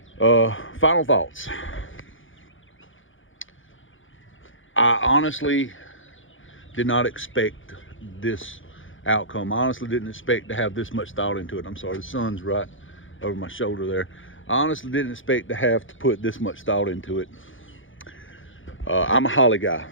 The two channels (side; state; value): right; late; 0.57 ms